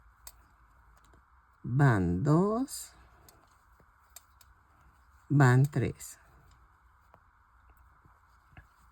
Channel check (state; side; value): identical; both; correlation 1.00